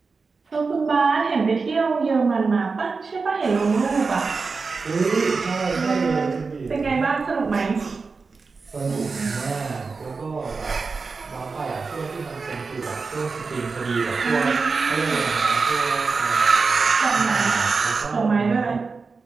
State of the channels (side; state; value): left; quieter; 4.5 dB